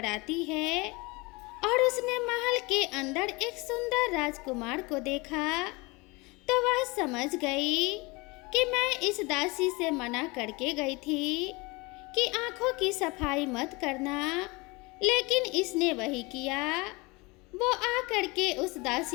आती है और उसने महल के अंदर एक सुंदर राजकुमार को देखा तो वह समझ गई कि मैं इस दासी से मना करके गई थी कि आंखों की सफाई मत करना, लेकिन इसने वही किया। वो आकर के उस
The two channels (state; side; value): quieter; right; 25.5 dB